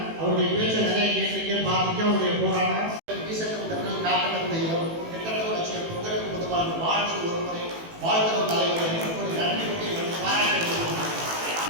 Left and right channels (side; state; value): left; late; 18 ms